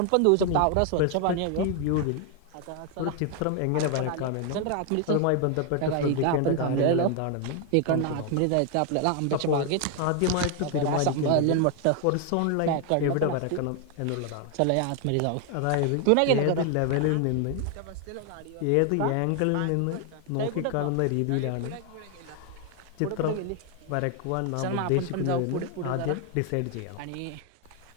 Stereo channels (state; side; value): different; both; correlation 0.00